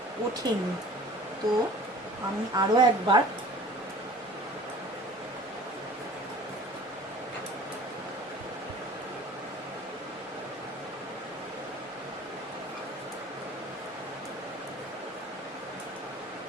ওঠেনি, তো আমি আরো একবার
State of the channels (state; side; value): normal; both; correlation 0.46